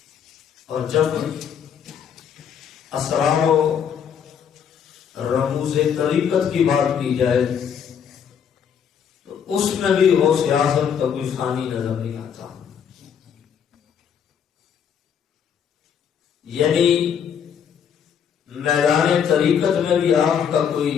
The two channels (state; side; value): quieter; right; 7.9 dB